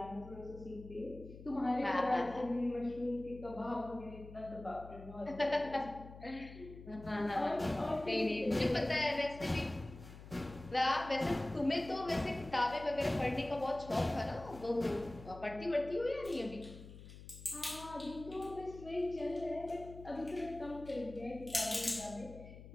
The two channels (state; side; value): noise; left; hum, 15 dB below the sound